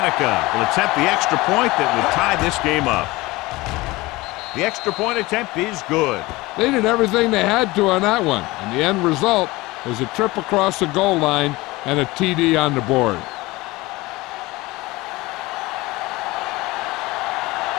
will attempt the extra point that would tie this game up. The extra point attempt is good. They did everything they had to on that one, and the end result was a trip across the goal line and a TD on the board.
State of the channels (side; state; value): right; quieter; 20.9 dB